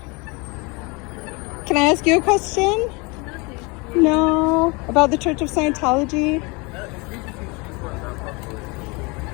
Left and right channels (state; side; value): quieter; right; 27.8 dB